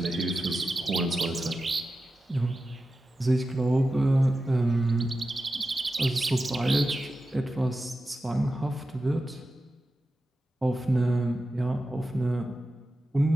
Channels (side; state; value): both; normal; correlation 0.92